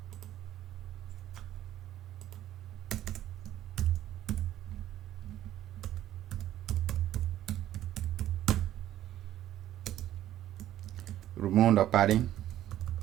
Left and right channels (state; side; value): quieter; left; 12.8 dB